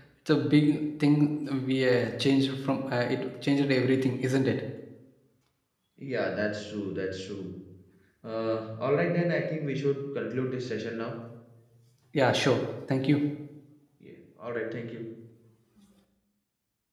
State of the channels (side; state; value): both; identical; correlation 1.00